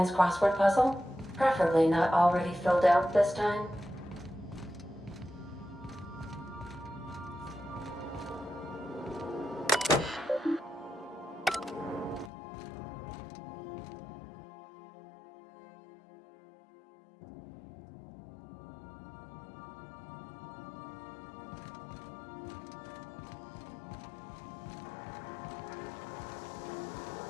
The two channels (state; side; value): drops out; right; at 12.3 s